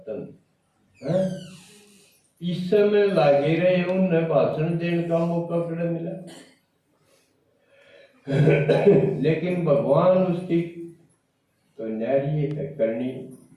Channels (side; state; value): both; identical; correlation 1.00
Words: है। इस समय लागे रहे उन्हें भाषण देने का मौका कड़ा मिला। लेकिन भगवान उसकी तो न्यारी है करनी,